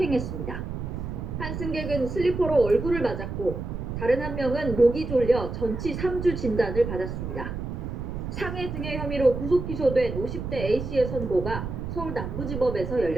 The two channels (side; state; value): right; noise; rumble, 6 dB below the sound